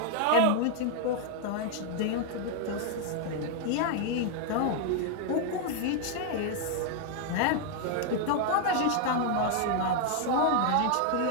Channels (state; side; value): different; both; correlation 0.00